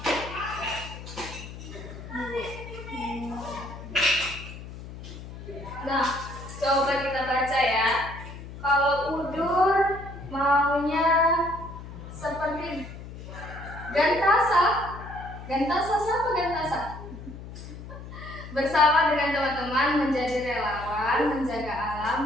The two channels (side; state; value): left; noise; hum, 13 dB below the sound